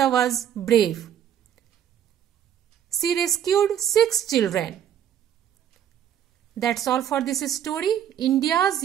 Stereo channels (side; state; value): left; quieter; 9.9 dB